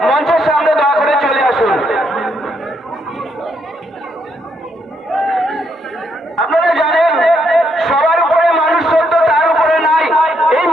মঞ্চের সামনে দয়া করে চলে আসুন। আপনারা জানেন সবার উপরে মানুষ সত্য, তার উপরে নাই। এই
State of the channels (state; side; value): normal; both; correlation 0.75